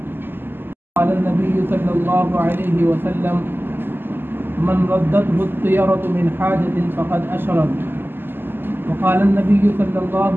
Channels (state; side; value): late; left; 0.098 ms